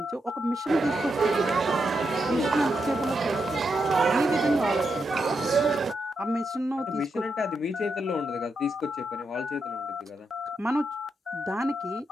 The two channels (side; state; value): both; normal; correlation 0.84